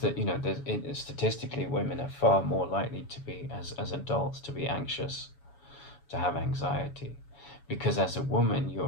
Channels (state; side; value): late; right; 7.1 ms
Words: statistically women are far more likely to be, as adults, to be anxious, to have anxiety, because as a woman